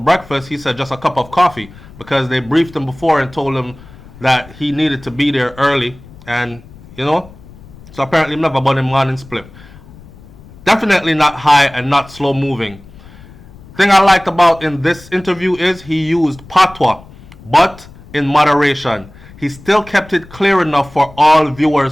He said, "Just a cup of coffee," because they briefed him before and told him that he needed to be there early, and so apparently never bought him morning split. Definitely not high and not slow moving. Thing I liked about in this interview is he used patois, but in moderation. He still kept it clear enough for all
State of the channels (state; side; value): noise; left; rumble, 21 dB below the sound